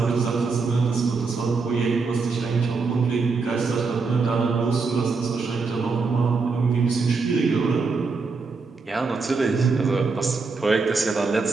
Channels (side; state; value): left; quieter; 4.4 dB